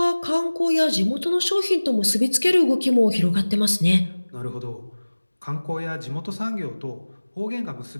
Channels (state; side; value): inverted; both; correlation -1.00